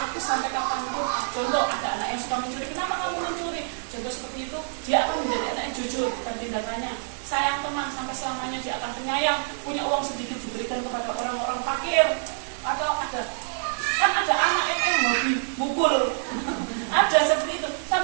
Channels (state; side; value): silent; left; digital silence